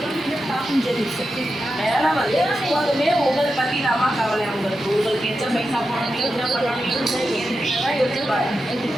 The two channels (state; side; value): normal; both; correlation 0.89